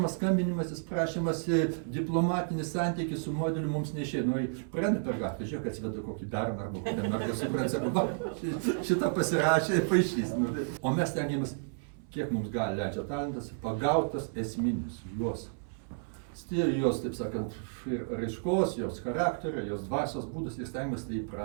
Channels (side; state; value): left; silent; 57 dB below the other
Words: skambinimasis, prašymas, diplomatinis santykis su modeliu mums neišėjo. Nu, praeina per gatvę, žiūrėk, atsiveda kokį berną arba kokią mergą, suprant, sako, šitą pasirašė ir paaišys. O mes stengiamės, kiek mums gali leidžia talentas, pagautas esminius juos. Jos, taip sakant, ir raiškos, jos charakterio, jos dvasios būdas ir stengiamės tai